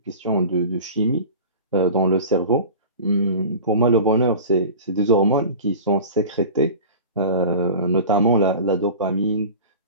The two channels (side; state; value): both; inverted; correlation -0.36